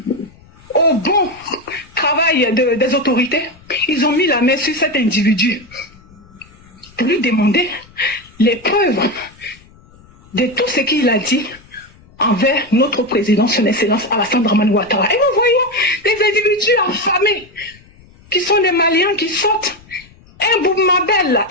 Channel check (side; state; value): left; noise; rumble, 26 dB below the sound